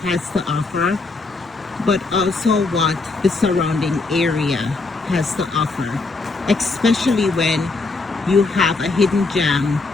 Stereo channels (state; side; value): quieter; right; 3.7 dB